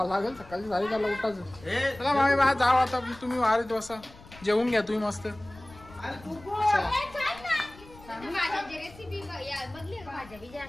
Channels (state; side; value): noise; left; rumble, 21 dB below the sound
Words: लागेल. सकाळची 4:30ला उठायचं. चला मामी बा जाऊ आता, तुम्ही वारीत बसा, जेवून घ्या तुम्ही मस्त.